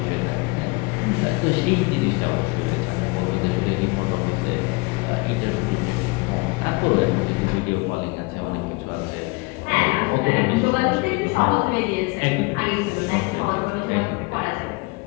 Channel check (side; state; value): right; quieter; 26.5 dB